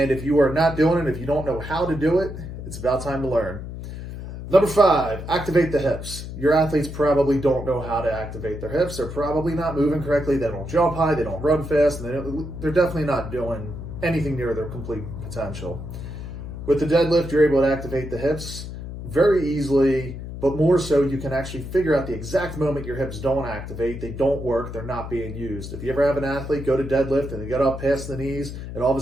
if you are not doing it, if you don't know how to do it, it's about time to learn. Number 5, activate the hips. Your athletes probably don't know how to activate their hips. They're probably not moving correctly. They don't jump high. They don't run fast. And they're definitely not doing anything near their complete potential. With the deadlift, you're able to activate the hips very easily, but more so you can actually figure out the exact moment your hips don't activate. They don't work. They're not being used. If you ever have an athlete go to deadlift and they get up past the knees and all of a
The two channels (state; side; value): noise; left; hum, 9 dB below the sound